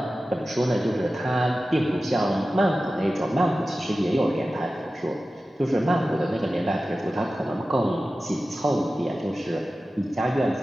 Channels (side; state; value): both; normal; correlation 0.95